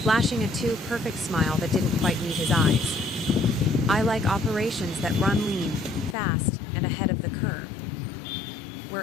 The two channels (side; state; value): right; drops out; at 6.2 s